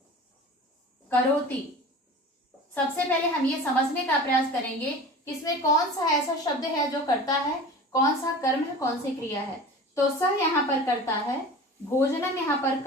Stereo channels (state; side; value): normal; both; correlation 0.37